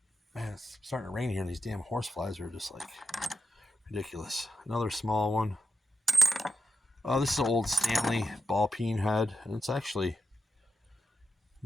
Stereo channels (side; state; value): both; normal; correlation 0.87